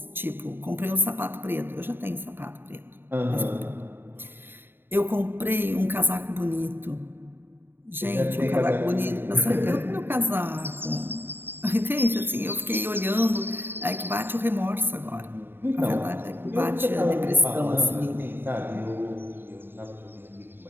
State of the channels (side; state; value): left; late; 0.10 ms